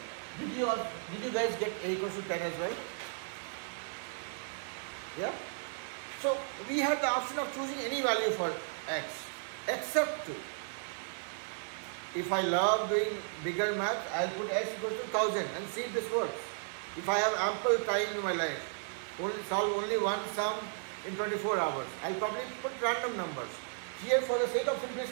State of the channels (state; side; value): silent; left; digital silence